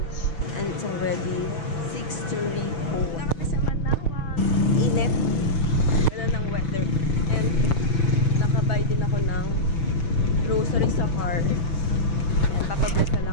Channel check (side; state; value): right; late; 6.2 ms